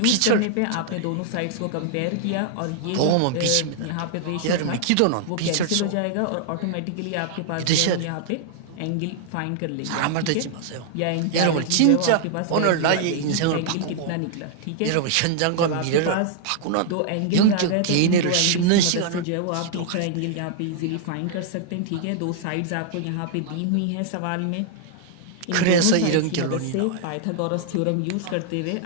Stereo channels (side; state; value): both; different; correlation -0.01